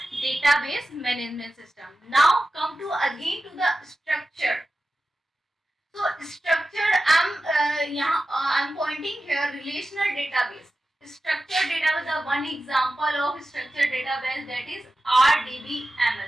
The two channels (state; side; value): normal; both; correlation 0.94